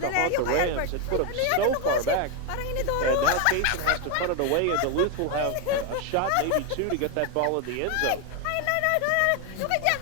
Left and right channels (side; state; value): both; different; correlation 0.01